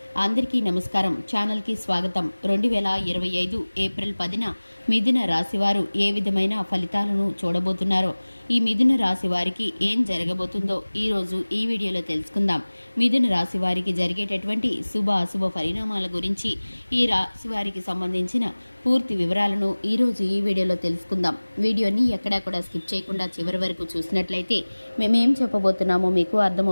అందరికీ నమస్కారం. ఛానల్కి స్వాగతం. 2025 ఏప్రిల్ 10న మిథున రాశి వారు ఏ విధమైన ఫలితాలను చూడబోతున్నారో, ఈ మిథున రాశి వారికి ఏం జరగబోతుందో ఈరోజు ఈ వీడియోలో తెలుసుకుందాం. మిథున రాశి వారికి జరిగేటటువంటి శుభ అశుభ పరిణామాల గురించి, ఈ రాశి వారికి సంబంధించిన పూర్తి వివరాలను ఈరోజు ఈ వీడియోలో తెలుసుకుందాం. వీడియోని ఎక్కడా కూడా స్కిప్ చేయకుండా చివరి వరకు చూసినట్లయితే మేమేం చెప్పబోతున్నామో మీకు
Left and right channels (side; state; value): both; inverted; correlation -1.00